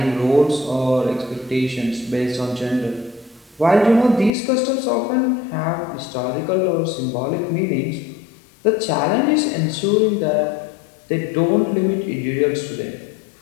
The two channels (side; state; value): right; drops out; at 4.3 s